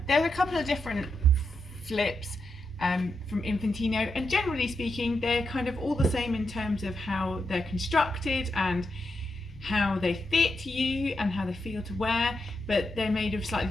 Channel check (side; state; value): both; normal; correlation 0.85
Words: are a couple of different flips from Infantino, and generally speaking, they're kind of all the same in terms of how they're constructed and how they fit you and how they feel to wear, but they're made of slightly